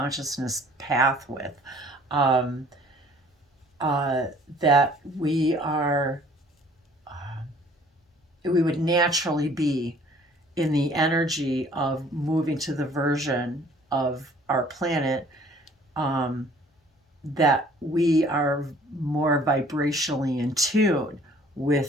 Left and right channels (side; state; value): both; normal; correlation 0.55